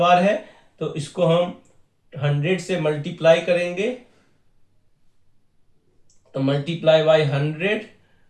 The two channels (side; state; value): both; identical; correlation 1.00